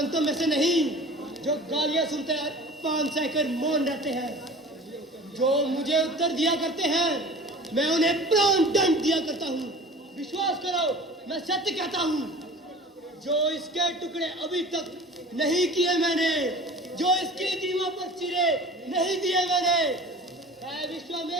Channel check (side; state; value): both; normal; correlation 0.41